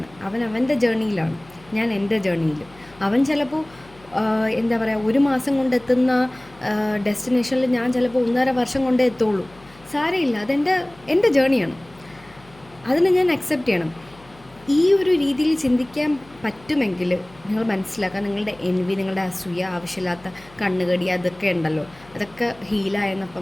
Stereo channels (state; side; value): noise; left; hum, 25 dB below the sound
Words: അവൻ അവൻ്റെ ജേർണിയിലാണ്, ഞാൻ എൻ്റെ ജേർണിയിൽ. അവൻ ചിലപ്പോൾ എന്താ പറയുക, ഒരു മാസം കൊണ്ടെത്തുന്ന ഡെസ്റ്റിനേഷനിൽ ഞാൻ ചിലപ്പോൾ 1.5 വർഷം കൊണ്ടേ എത്തുള്ളൂ. സാരമില്ല, എൻ്റെ ജേണിയാണ്, അതിനെ ഞാൻ അക്സെപ്റ്റ് ചെയ്യണം. ഈ ഒരു രീതിയിൽ ചിന്തിക്കാൻ പറ്റുമെങ്കിൽ നിങ്ങൾ മനസ്സിലാക്കുക, നിങ്ങളുടെ എൻവി, നിങ്ങളുടെ അസൂയ, ആവശ്യമില്ലാത്ത കണ്ണുകടി, അതൊക്കെ ഉണ്ടല്ലോ, അതൊക്കെ ഹീലായെന്നപ്പം